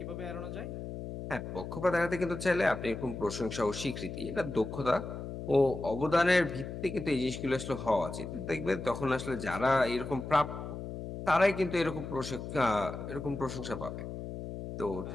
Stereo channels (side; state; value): left; noise; hum, 8 dB below the sound